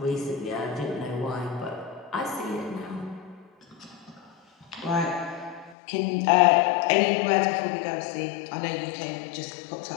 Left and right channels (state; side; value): drops out; right; at 5.8 s